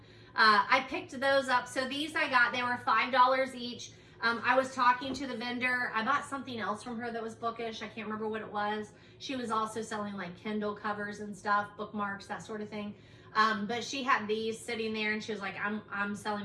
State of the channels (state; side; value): identical; both; correlation 1.00